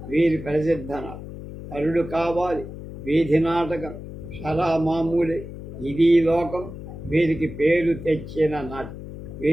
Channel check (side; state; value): left; noise; hum, 11 dB below the sound